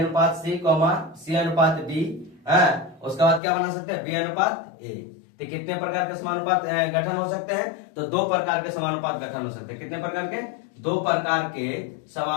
सी कॉमा सी अनुपात बी, उसके बाद क्या बना सकते हैं, बी अनुपात ए। तो कितने प्रकार के समानुपात गठन हो सकते हैं, तो 2 प्रकार के समानुपात गठन हो सकते हैं। कितने प्रकार के, 2 प्रकार के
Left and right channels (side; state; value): right; drops out; at 3.4 s